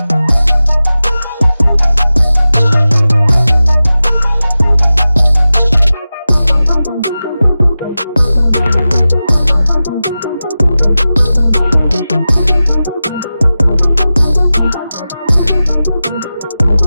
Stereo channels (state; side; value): inverted; both; correlation -0.95